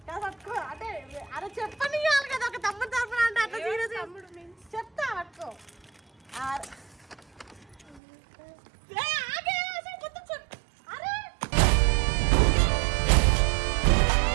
కాదు పట్టుకో. అంటే అరే చెప్పని కదా ఒక తమ్ముడు తరఫున అంటే అట్లా సీరియస్ తమ్ముడు మీన్స్ చెప్తా పట్టుకో.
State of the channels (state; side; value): drops out; left; at 8.0 s